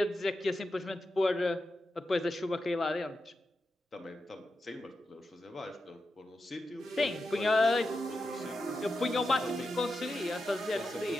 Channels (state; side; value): normal; both; correlation 0.89